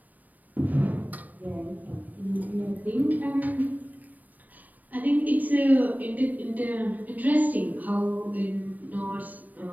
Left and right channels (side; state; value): left; late; 0.080 ms